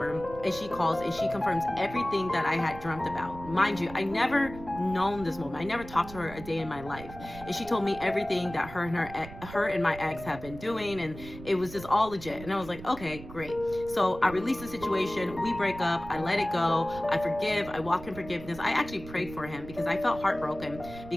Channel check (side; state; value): right; noise; rumble, 14 dB below the sound